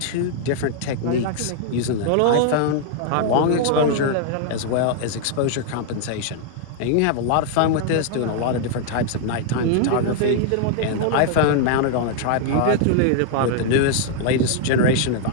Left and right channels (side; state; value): both; different; correlation 0.00